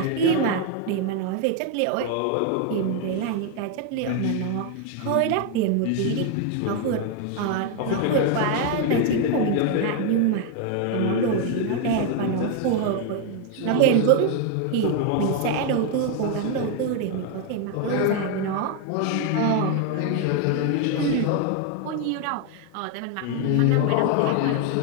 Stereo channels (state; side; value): different; both; correlation 0.01